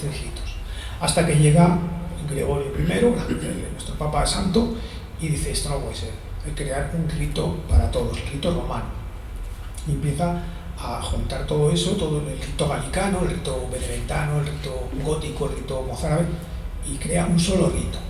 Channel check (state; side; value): identical; both; correlation 1.00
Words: ritos. Hasta que llega Gregorio I, nuestro Papa Santo, y dice, esto no puede ser, hay que crear un rito para todos, el rito romano. Y empieza a juntar todo eso, todo el rito galicano, el rito benedictino, el rito gótico, el rito mozárabe, y crea un solo rito.